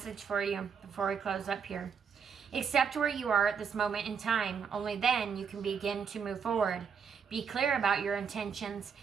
for you before we close up here. Accept where you are at this moment in time. Only then you can begin to move forward. Be clear about your intentions.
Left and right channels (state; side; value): quieter; left; 6.6 dB